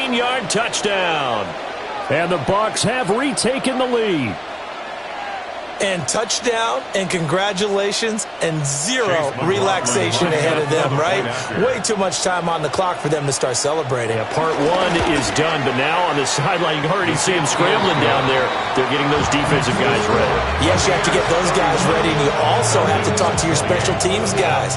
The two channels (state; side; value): identical; both; correlation 1.00